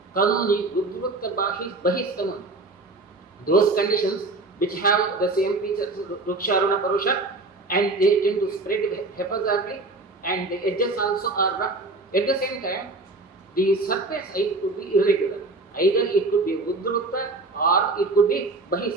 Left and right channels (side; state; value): left; quieter; 3.2 dB